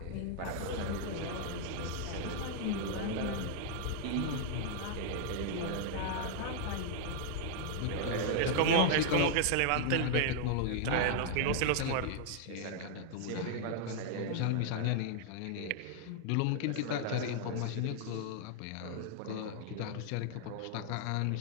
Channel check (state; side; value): different; both; correlation 0.00